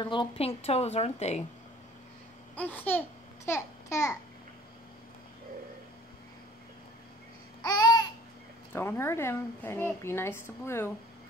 little pink toes, aren't they? I see toe. Don't hurt him, Penny. Be nice to Blue.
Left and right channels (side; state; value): both; normal; correlation 0.51